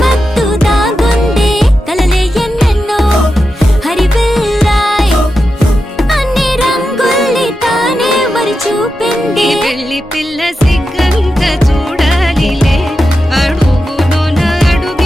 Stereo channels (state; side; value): normal; both; correlation 0.90